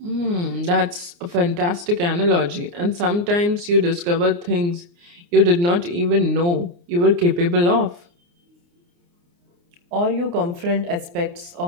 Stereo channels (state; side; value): late; left; 29 ms